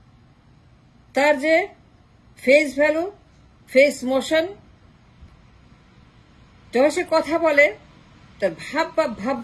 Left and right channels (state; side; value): identical; both; correlation 1.00